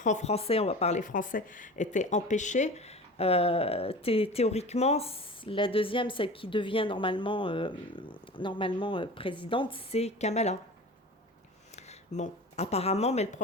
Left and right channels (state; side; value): normal; both; correlation 0.36